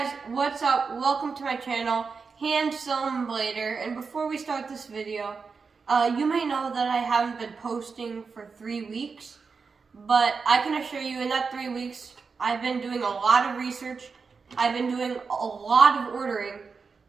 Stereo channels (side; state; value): left; quieter; 5.0 dB